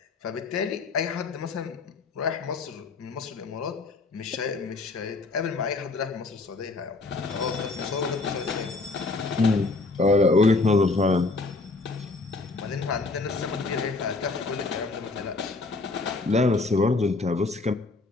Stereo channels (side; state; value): right; quieter; 3.6 dB